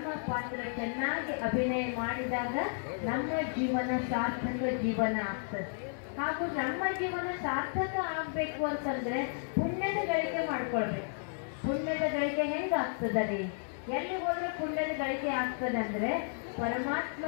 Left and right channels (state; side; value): silent; right; digital silence